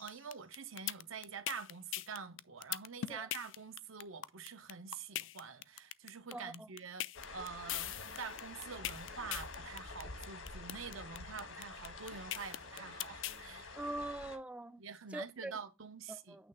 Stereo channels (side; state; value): both; normal; correlation 0.12